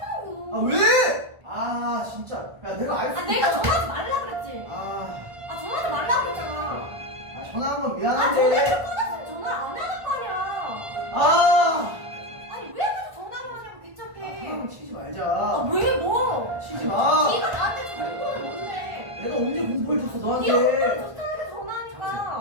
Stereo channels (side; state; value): left; late; 1.5 ms